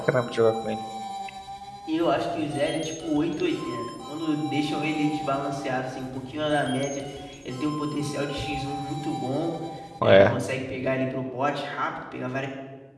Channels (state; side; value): identical; both; correlation 1.00